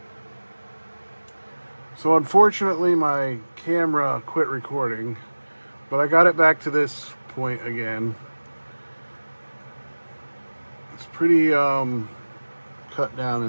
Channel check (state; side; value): inverted; both; correlation -1.00